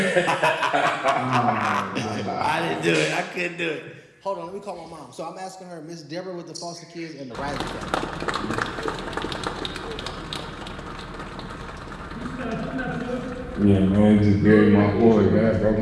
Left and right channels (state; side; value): identical; both; correlation 1.00